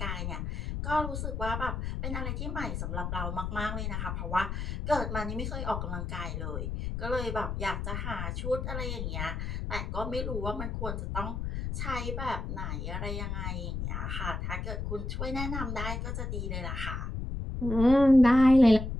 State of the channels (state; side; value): noise; left; rumble, 4 dB below the sound